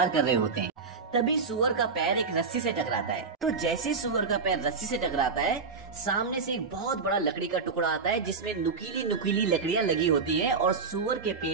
कर रहे होते हैं। तभी सुअर का पैर एक रस्सी से टकराता है। तो जैसे सुअर का पैर रस्सी से टकराता है, सामने से एक बहुत बड़ा लकड़ी का टुकड़ा आता है जिसमें नुकीली नुकीली लकड़ियां लगी होती हैं और सुअर के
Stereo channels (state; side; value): quieter; left; 4.8 dB